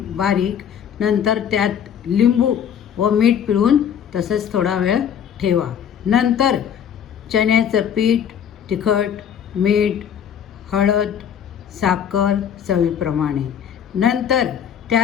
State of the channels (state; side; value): quieter; right; 8.7 dB